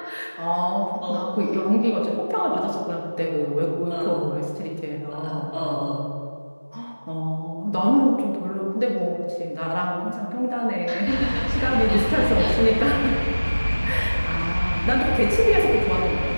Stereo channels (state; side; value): inverted; both; correlation -1.00